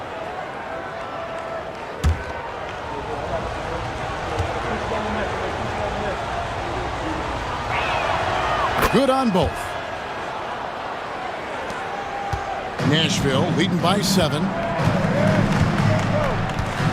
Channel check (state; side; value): identical; both; correlation 1.00